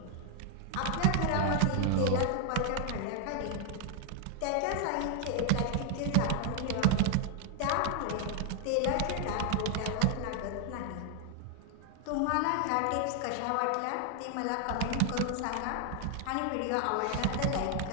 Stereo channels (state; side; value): different; both; correlation 0.00